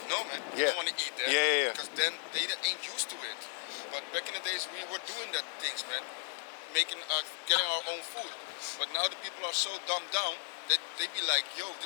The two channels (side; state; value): right; silent; 54 dB below the other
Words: no man, I don't want to eat that. Because then they ain't used to it. But back in the days we were doing that things, man, getting our own food. But now the people are so dumbed down that they be like, yo,